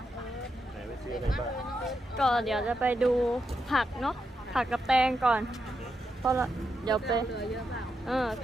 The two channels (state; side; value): normal; both; correlation 0.84